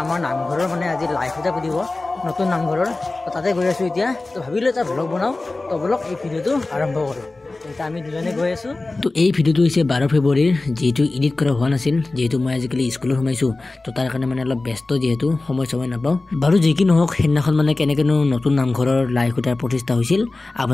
আমাৰ নামঘৰৰ মানে আজি লাইভ এটা দিব নতুন নামঘৰৰ তো তাতে গৈ আছো এতিয়া তো ভাবিলো এটা ব্লগ বনাও তো ব্লগ এই ভিডিওটো আৰম্ভ কৰো এটা আমি দুজনে গৈ আছো তো এই ভিডিওটো হৈছে 12 ফেব্ৰুৱাৰীৰ যেটো এডিট কৰা হোৱা নাছিল যেটো মই আজিকালি স্কুলত সোমাইছো তো তাৰ কাৰণে মানে অলপ ব্যস্ত যেটো সময় নাপাও বাৰু যে কি নহওক হেনাখন মানে কেনেকেনো নতুন নামঘৰৰ লাইভ এটা প্ৰতিষ্ঠা হৈছিল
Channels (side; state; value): right; quieter; 3.2 dB